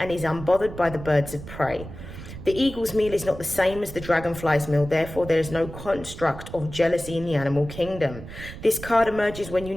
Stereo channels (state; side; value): noise; right; rumble, 12 dB below the sound